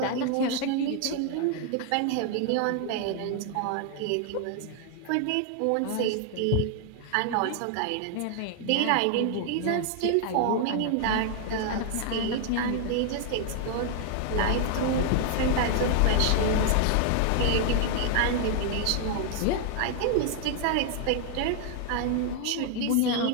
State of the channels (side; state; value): both; different; correlation 0.00